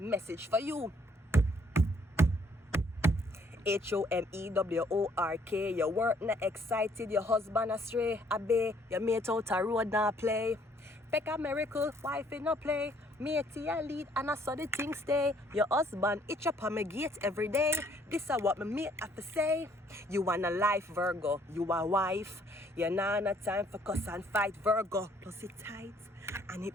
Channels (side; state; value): both; normal; correlation 0.64